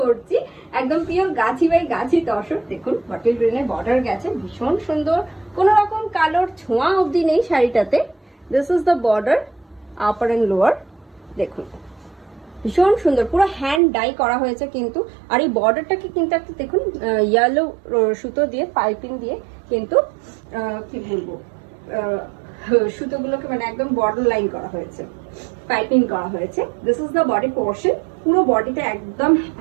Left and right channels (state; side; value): drops out; left; at 13.8 s